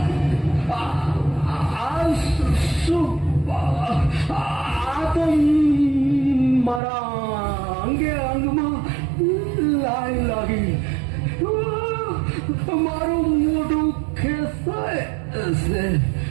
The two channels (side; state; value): left; drops out; at 6.8 s